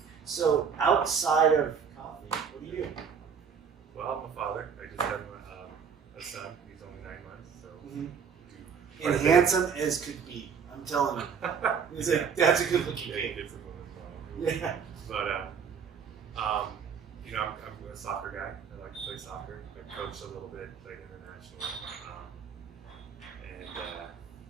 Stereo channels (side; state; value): left; quieter; 6.7 dB